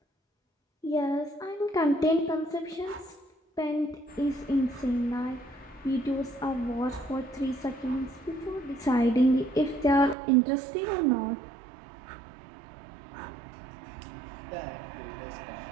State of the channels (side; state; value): left; drops out; at 10.2 s